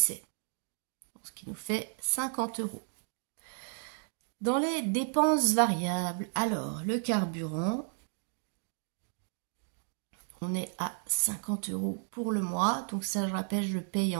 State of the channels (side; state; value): left; silent; 56 dB below the other